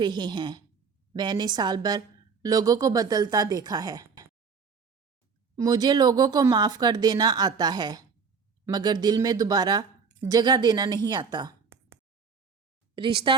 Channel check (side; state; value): left; quieter; 5.6 dB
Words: رہے ہیں، میں نے سال بھر لوگوں کو بدلتا دیکھا ہے۔ مجھے لوگوں کو معاف کر دینا آتا ہے، مگر دل میں دوبارہ جگہ دینا نہیں آتا۔ رشتہ